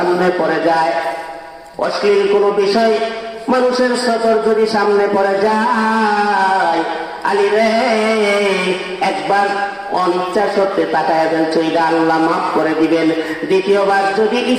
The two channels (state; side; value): identical; both; correlation 1.00